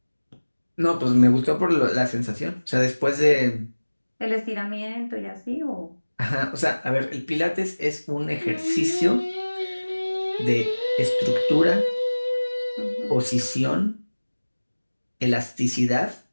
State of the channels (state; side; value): inverted; both; correlation -1.00